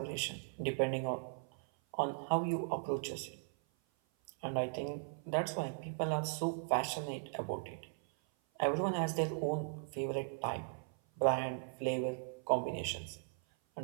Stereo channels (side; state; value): left; silent; 52 dB below the other